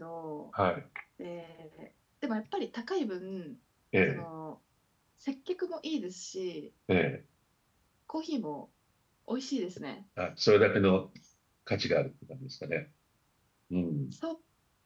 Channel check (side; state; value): both; identical; correlation 1.00